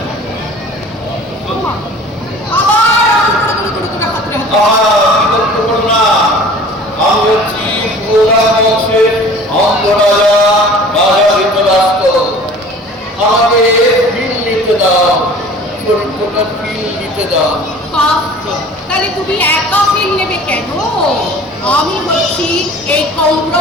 আবার হাতরে আমি হচ্ছি পুরা বংশের অন্ধ রাজা, রাজা ধৃতরাষ্ট্র। আমাকে ফিল নিতে দাও, চরিত্রটা ফিল নিতে দাও। তাহলে তুমি একা ফিল নেবে কেন? আমি হচ্ছি এই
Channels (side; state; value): both; normal; correlation 0.45